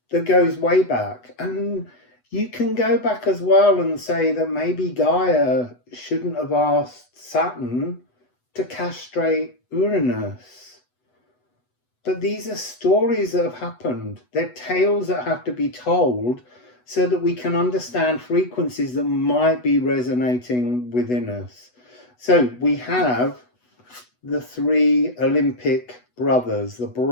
that goes way back. And you can go back as well and say that maybe Gaia shouldn't have asked Saturn to castrate Uranus. But these are stories that have happened. They're tales that have to be told so that we can understand frequencies that might be resonating within us. So we have the three Olympic brothers, the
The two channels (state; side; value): late; right; 8.1 ms